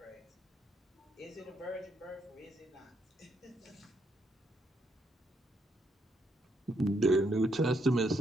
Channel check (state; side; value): normal; both; correlation 0.75